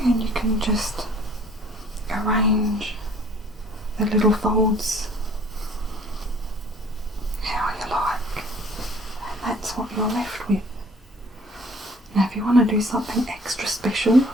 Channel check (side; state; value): both; normal; correlation 0.54